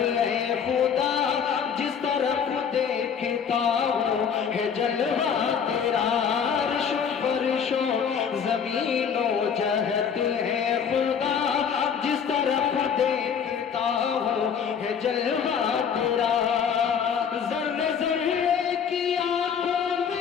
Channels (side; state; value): right; quieter; 7.2 dB